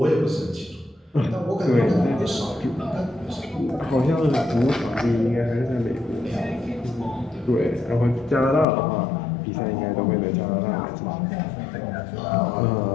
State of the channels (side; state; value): right; drops out; at 8.7 s